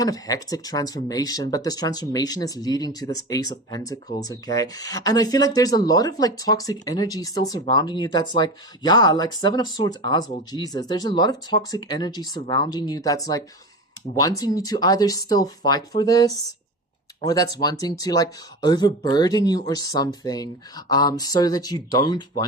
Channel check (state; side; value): normal; both; correlation 0.27